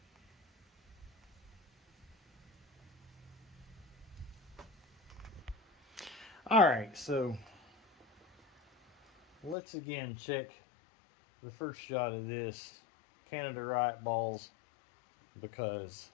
Alright, so let's again check the first shot of this Canada Riot balls, because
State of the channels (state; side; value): drops out; right; at 9.6 s